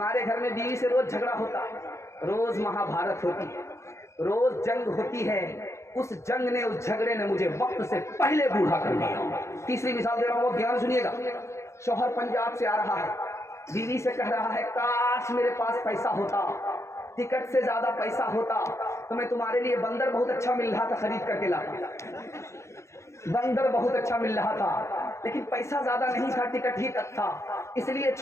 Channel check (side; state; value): right; late; 0.14 ms